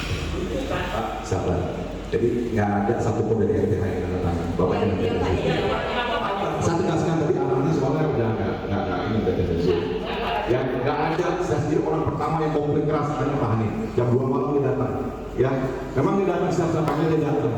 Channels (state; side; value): identical; both; correlation 1.00